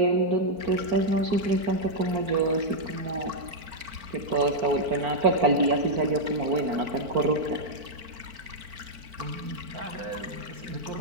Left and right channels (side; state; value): left; late; 4.5 ms